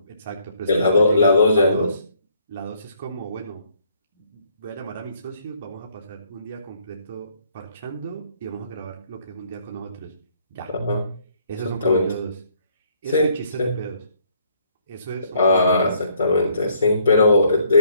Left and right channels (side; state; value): both; inverted; correlation -0.66